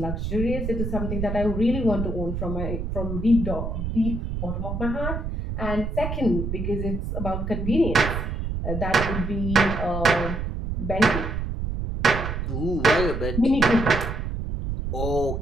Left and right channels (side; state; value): right; noise; rumble, 3 dB below the sound